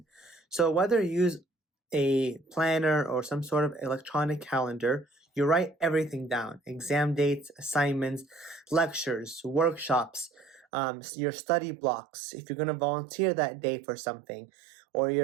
So whether you use a planner or some sort of electronic calendar, you write everything down: exam dates, assignments, lectures, workshops, your study blocks. If you're going to volunteer that day for something, or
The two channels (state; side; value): drops out; left; at 10.7 s